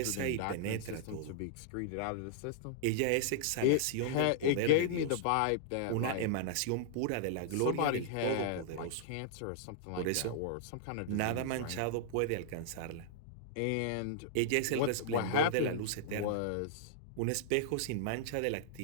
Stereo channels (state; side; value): different; both; correlation -0.01